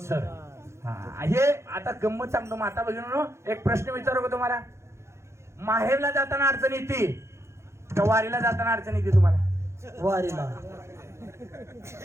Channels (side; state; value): left; late; 0.13 ms